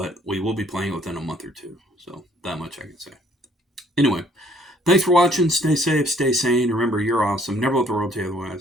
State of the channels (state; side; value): normal; both; correlation 0.61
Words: we will be playing within a month or two. So that much I can say. Anyway, thanks for watching. Stay safe, stay sane. Remember, you're awesome. Never let the world tell you